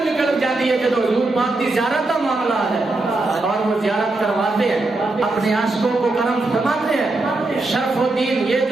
نکل جاتی ہے جب حضور پاک کی زیارت کا معاملہ ہے اور وہ زیارت کرواتے ہیں اپنے عاشقوں کو کرم فرماتے ہیں۔ شرف الدین یہ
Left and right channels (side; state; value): left; quieter; 3.0 dB